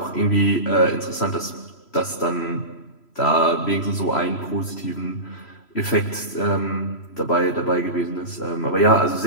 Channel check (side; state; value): right; late; 3.0 ms